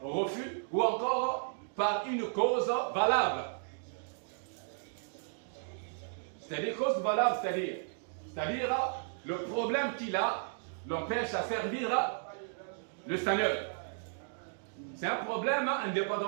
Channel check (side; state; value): left; silent; digital silence